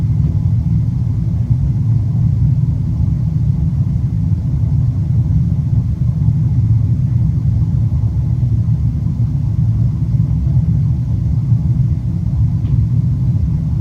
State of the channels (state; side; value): identical; both; correlation 1.00